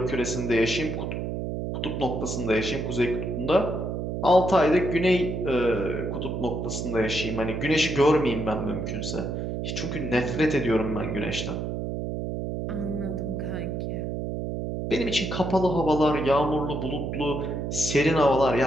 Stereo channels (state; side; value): noise; right; hum, 3 dB below the sound